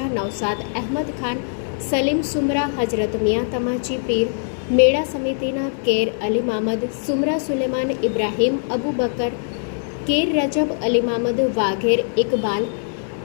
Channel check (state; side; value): silent; right; digital silence